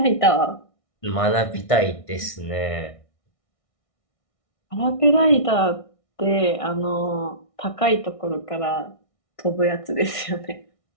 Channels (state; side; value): late; right; 1.6 ms